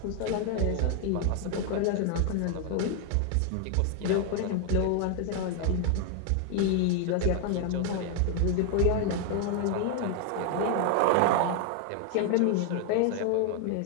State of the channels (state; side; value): different; both; correlation 0.00